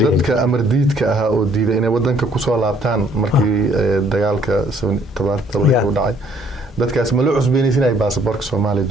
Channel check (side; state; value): both; normal; correlation 0.63